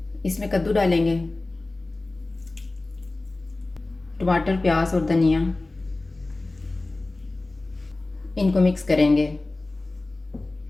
इसमें कद्दू डालेंगे, टमाटर, प्याज और धनिया। इनको मिक्स करेंगे।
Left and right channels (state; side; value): quieter; right; 3.0 dB